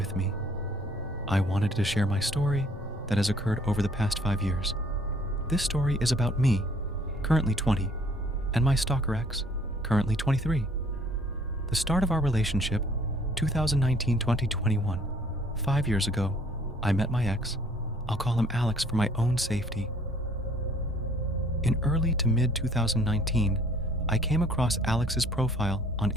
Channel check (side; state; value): both; normal; correlation 0.58